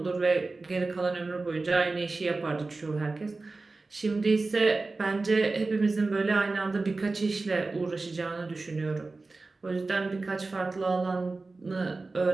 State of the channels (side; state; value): left; quieter; 3.6 dB